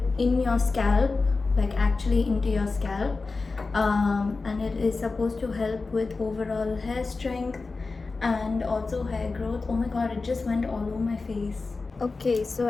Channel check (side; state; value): right; quieter; 3.9 dB